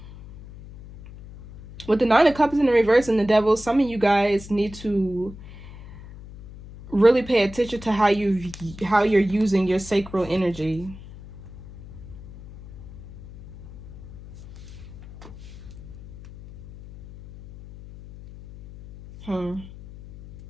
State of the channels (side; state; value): left; noise; hum, 16 dB below the sound